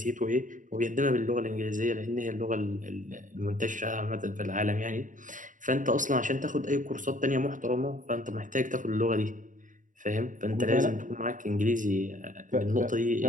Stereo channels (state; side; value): late; left; 0.38 ms